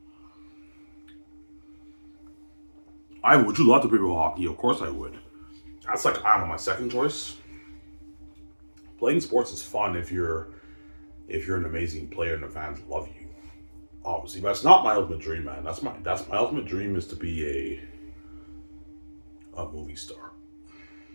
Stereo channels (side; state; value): both; inverted; correlation -1.00